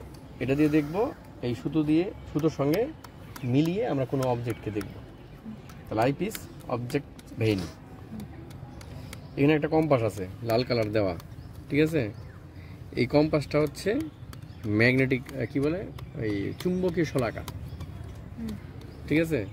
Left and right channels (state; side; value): identical; both; correlation 1.00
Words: এটা দিয়ে দেখব, এই সুতো দিয়ে, সুতোর সঙ্গে মিলিয়ে আমরা কোনো অবজেক্টকে দেখব। তাহলে আইপিস, অবজেক্ট, ভেইন। এখানে একটা কম্পাস আছে লাল কালার দেওয়া, ঠিক আছে? এই কম্পাসটা হচ্ছে ম্যাগনেটিক, কি বলে, এই চুম্বকীয় শলাকা, ঠিক আছে?